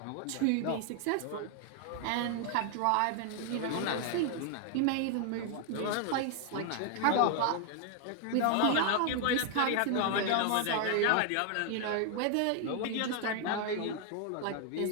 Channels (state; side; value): different; both; correlation 0.00